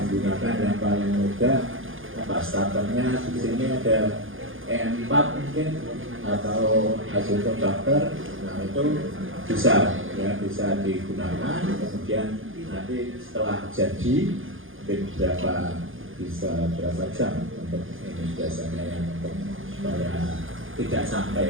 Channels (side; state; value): left; late; 0.58 ms